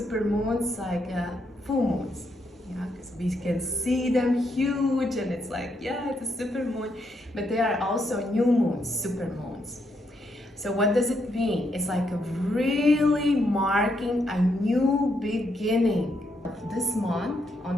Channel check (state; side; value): normal; both; correlation 0.78